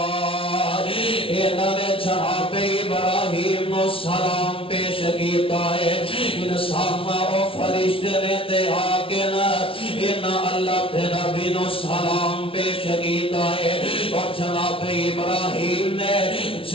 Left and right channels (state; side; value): late; right; 0.26 ms